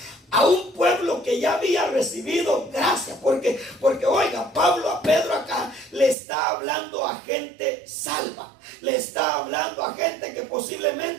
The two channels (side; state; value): left; drops out; at 6.2 s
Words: a un pueblo que ya había recibido gracia, porque oiga, a Pedro acá le está hablando a gente salva, le está hablando a gente que